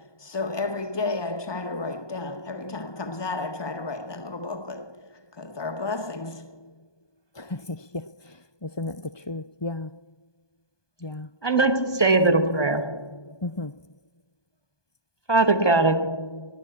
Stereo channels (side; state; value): right; late; 1.2 ms